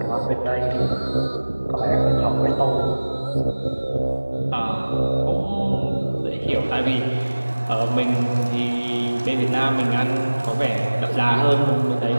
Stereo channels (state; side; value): inverted; both; correlation -1.00